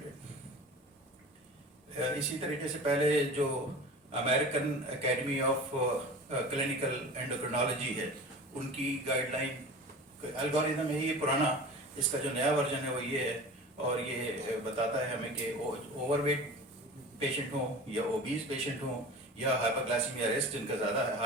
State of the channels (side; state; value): both; normal; correlation 0.36